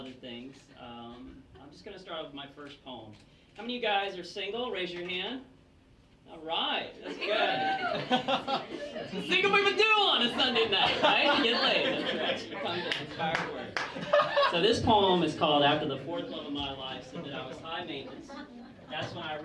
things. I'm just going to start with my first poem. How many of you guys are single? Raise your hand. All right, that's good. Single people do on a Sunday night, right? You get laid. That's right. You come to inspired words. So this poem is called "After the Fourth Love of My Life Said That I Was High Maintenance." That's when I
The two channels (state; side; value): identical; both; correlation 1.00